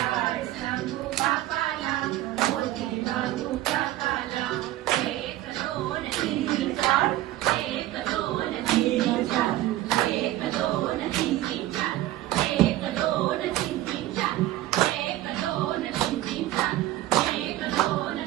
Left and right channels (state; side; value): quieter; left; 15.3 dB